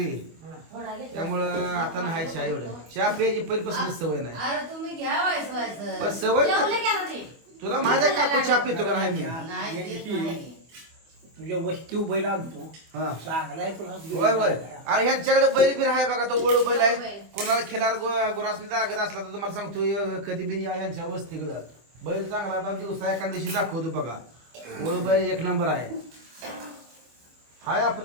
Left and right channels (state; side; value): late; left; 24 ms